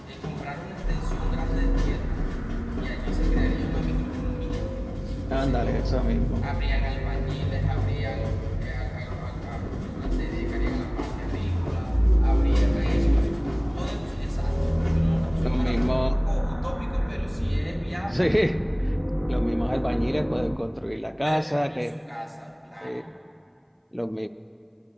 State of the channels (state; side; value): identical; both; correlation 1.00